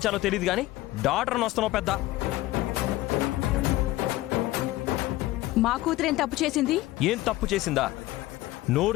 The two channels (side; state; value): right; quieter; 17.2 dB